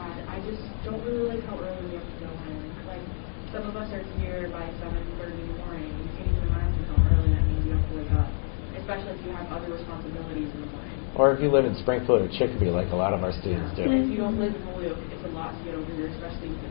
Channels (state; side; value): silent; right; digital silence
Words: I just don't really like how early we have to go in. Like, some of us are here by 7:30 in the morning. You can't even imagine how early that means you have to wake up, especially if you have other responsibilities in the morning. Or if you live in Springfield or Chicopee, like a lot of our students do. If you don't live in Holyoke, it's a lot to get over here, especially with